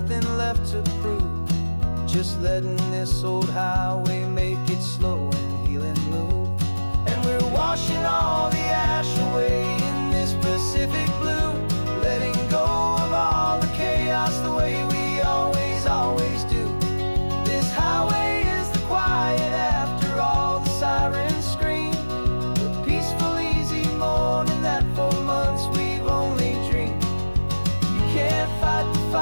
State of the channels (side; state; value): both; inverted; correlation -1.00